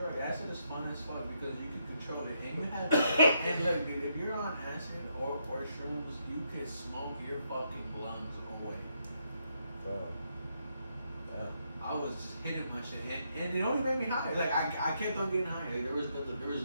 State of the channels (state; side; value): inverted; both; correlation -0.78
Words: Acid is fun as fuck because you can control it, and you have. And look, dude, if you're on acid or shrooms, you can smoke your fucking lungs away. Bro. Yeah. I was just hitting my shit, and it only made me high. Like I kept on getting high. Like, there was